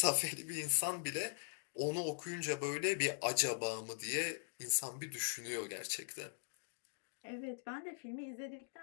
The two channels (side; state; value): right; silent; digital silence